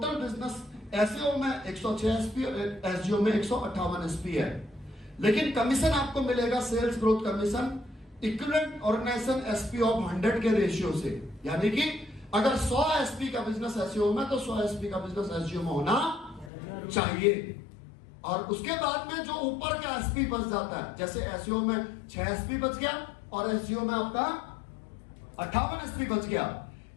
बिजनेस एसईओ में 106 एसपी, एसजीओ में 158 एसपी है, लेकिन कमीशन आपको मिलेगा sales growth commission equivalent organisation SP of 100 के रेशियो से। यानी कि अगर 100 एसपी का बिजनेस एसईओ में तो 100 एसपी का बिजनेस एसजीओ में होना चाहिए। और उसके बाद में जो ऊपर का एसपी बच जाता है, जैसे एसईओ में 6 एसपी बच गया और एसजीओ में आपका 58 एसपी बच गया,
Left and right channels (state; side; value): drops out; right; at 16.5 s